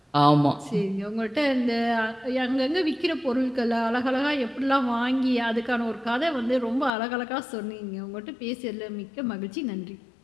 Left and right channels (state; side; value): drops out; right; at 6.9 s